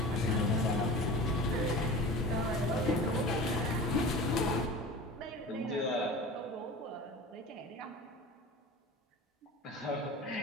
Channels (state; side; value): normal; both; correlation 0.36